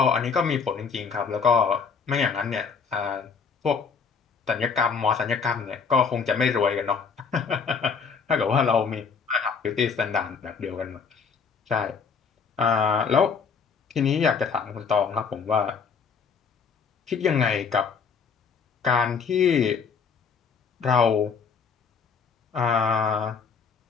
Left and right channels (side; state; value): right; quieter; 5.8 dB